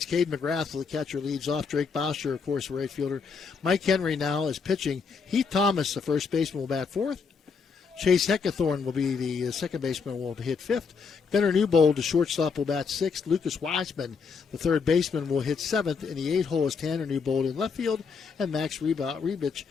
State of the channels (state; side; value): quieter; right; 5.5 dB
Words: Cade McGrath, the catcher, leads off. Drake Bauscher, of course, right fielder. Mike Henry now is pitching. Heath Thomas, the first baseman, will bat fourth. Chase Heckathorn will be the second baseman, will hit fifth. Gunnar Newbold, the shortstop, will bat sixth. Lucas Wiseman, the third baseman, will hit seventh. In the 8th hole is Tanner Newbold in left field. And Max Rebich